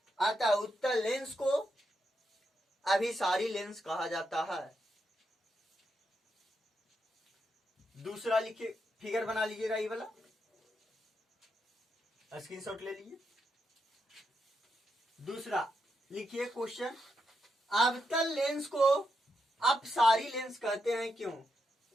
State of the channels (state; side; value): normal; both; correlation 0.83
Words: अतः उत्तल लेंस को अभिसारी लेंस कहा जाता है। दूसरा लिखिए, फिगर बना लीजिएगा, ये वाला स्क्रीनशॉट ले लीजिए। दूसरा लिखिए क्वेश्चन, अवतल लेंस को अपसारी लेंस कहते हैं क्यों।